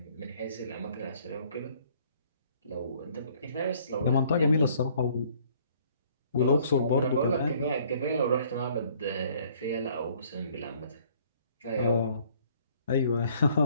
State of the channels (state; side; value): inverted; both; correlation -0.60